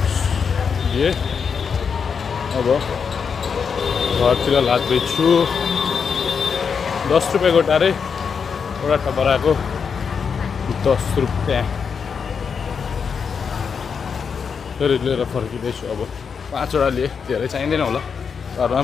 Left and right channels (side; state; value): right; quieter; 6.2 dB